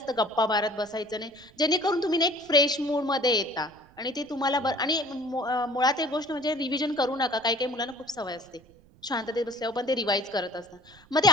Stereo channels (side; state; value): right; noise; rumble, 27 dB below the sound